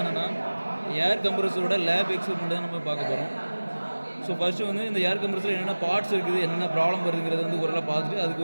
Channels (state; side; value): inverted; both; correlation -1.00